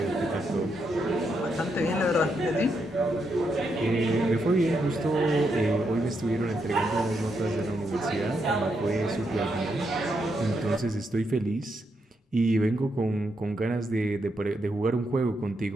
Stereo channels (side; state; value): both; normal; correlation 0.81